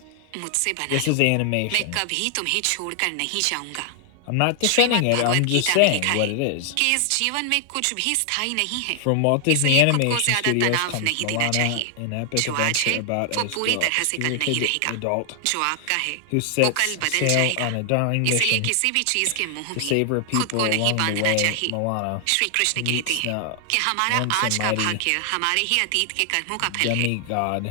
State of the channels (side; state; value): both; different; correlation 0.00